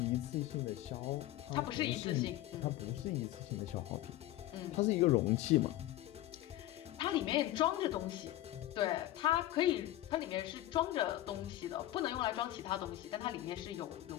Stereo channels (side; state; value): right; quieter; 14.8 dB